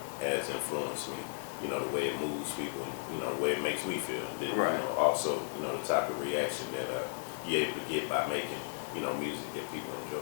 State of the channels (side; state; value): right; silent; digital silence